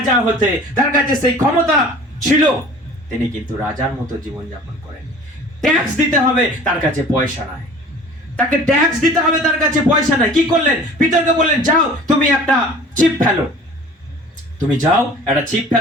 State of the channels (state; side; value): normal; both; correlation 0.45